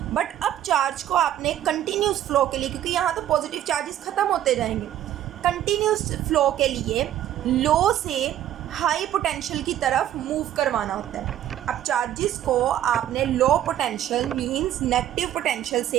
बट अब चार्ज को आपने कंटिन्यूस फ्लो के लिए, क्योंकि यहाँ तो पॉजिटिव चार्जेस ख़त्म होते जाएंगे, कंटिन्यूस फ्लो के लिए लो से हाई पोटेंशियल की तरफ मूव करवाना होता है। अब चार्जेस को आपने low potential means negative potential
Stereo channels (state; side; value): quieter; left; 11.9 dB